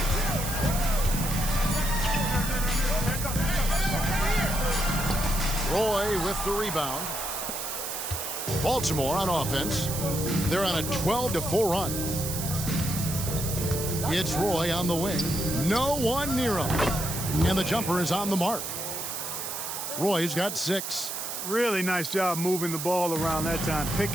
Roy with the rebound. Baltimore on offense. They're on a 12-4 run. It's Roy on the wing. No one near him. And the jumper is on the mark. Roy's got 6. Really nice job moving the ball around that time,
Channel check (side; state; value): right; noise; hiss, 5 dB below the sound